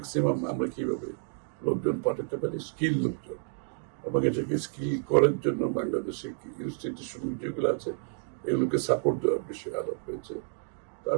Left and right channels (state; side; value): silent; left; 58 dB below the other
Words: আমরা কিভাবে লোকজন পাঠাতে পারি, স্কিল লোকজন, এবং এটাকে স্কিল করার জন্য বাংলাদেশে ইনস্টিটিউশন যেগুলো আছে এগুলোকে সাপোর্ট দেওয়ার বিষয়ে আলাপ হয়েছে।